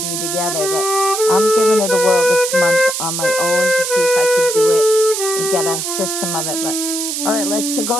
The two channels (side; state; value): right; noise; hiss, 3 dB below the sound